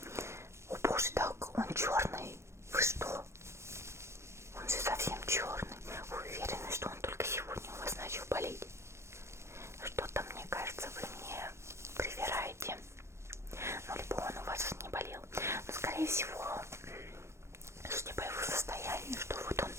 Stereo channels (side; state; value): left; late; 0.13 ms